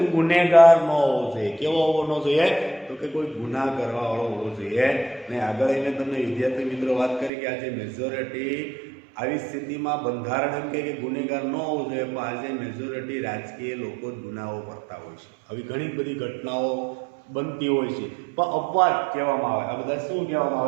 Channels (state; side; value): drops out; left; at 7.3 s